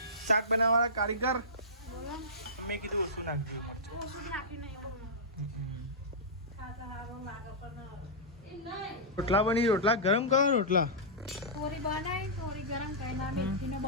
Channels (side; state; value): both; normal; correlation -0.15